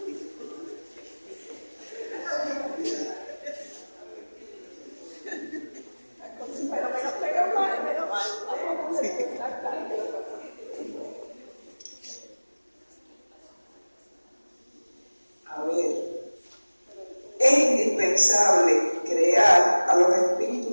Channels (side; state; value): both; inverted; correlation -1.00